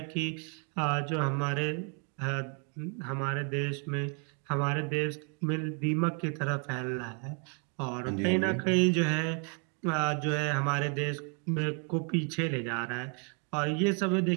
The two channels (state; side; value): quieter; left; 38.7 dB